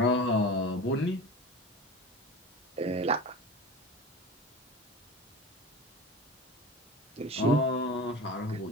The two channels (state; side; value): normal; both; correlation 0.33